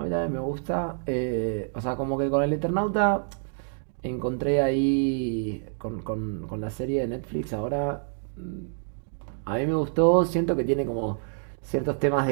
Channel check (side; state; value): left; silent; digital silence